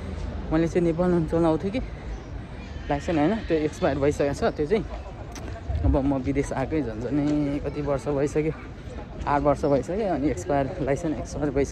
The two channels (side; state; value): both; identical; correlation 1.00